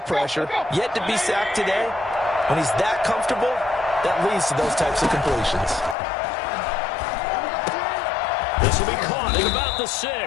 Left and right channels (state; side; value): drops out; right; at 6.0 s